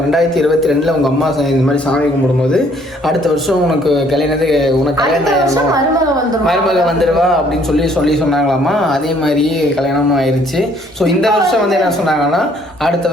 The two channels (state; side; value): normal; both; correlation 0.63